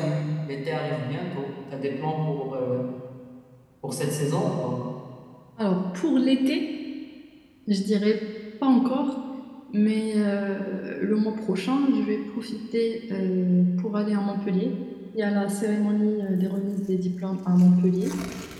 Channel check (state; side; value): identical; both; correlation 1.00